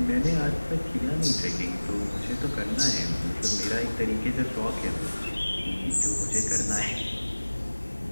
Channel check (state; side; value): inverted; both; correlation -1.00